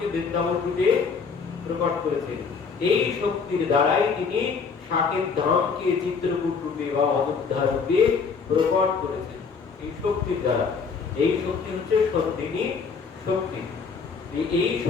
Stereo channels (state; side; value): quieter; right; 5.4 dB